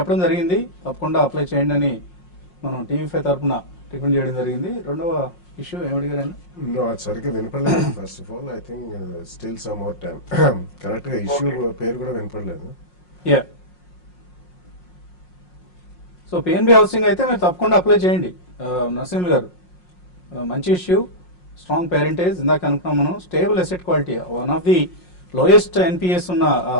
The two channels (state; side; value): late; right; 5.6 ms